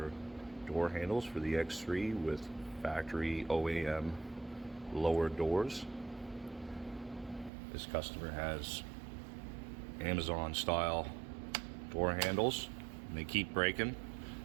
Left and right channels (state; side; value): drops out; left; at 7.5 s